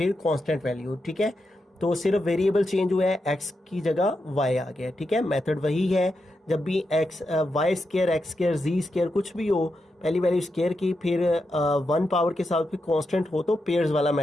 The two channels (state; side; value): normal; both; correlation 0.86